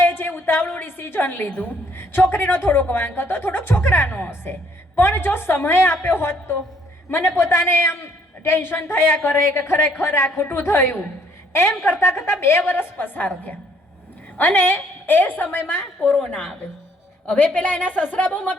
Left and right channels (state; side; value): normal; both; correlation 0.64